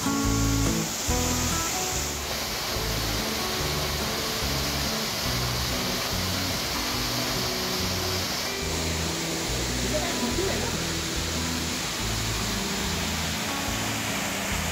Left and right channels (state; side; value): identical; both; correlation 1.00